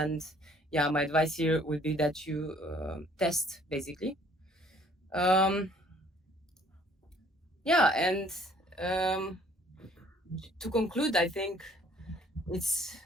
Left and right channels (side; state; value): both; normal; correlation 0.58